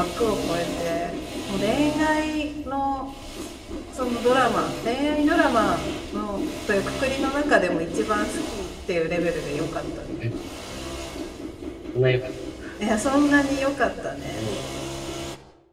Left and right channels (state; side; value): identical; both; correlation 1.00